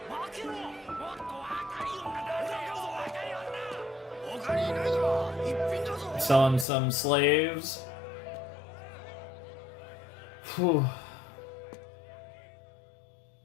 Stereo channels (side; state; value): right; drops out; at 6.7 s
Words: Selling some slaves. Whew.